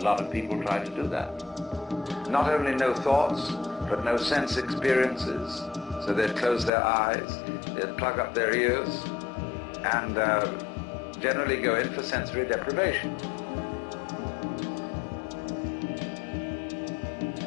lot of people try to do that. Not only no thoughts, but no sense experiences. So they'd close their eyes, they'd plug up their ears, and generally go in for sensory deprivation.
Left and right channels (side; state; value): right; drops out; at 6.7 s